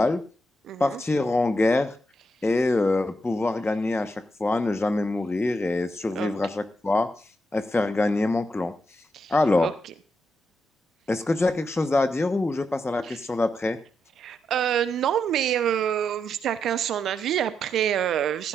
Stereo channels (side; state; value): both; normal; correlation 0.82